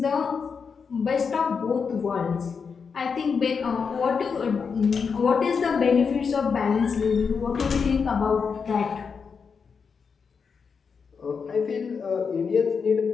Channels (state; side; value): quieter; right; 5.8 dB